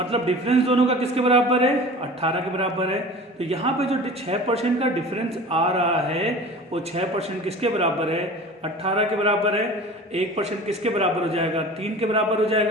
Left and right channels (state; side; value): normal; both; correlation 0.39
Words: डिफरेंस दोनों का किसके बराबर है, 18 के बराबर है। तो यहाँ पे जो 6% का डिफरेंस आ रहा है वो 6% किसके बराबर है, 18 के बराबर है। 1% किसके बराबर हो जाएगा, 3 के बराबर हो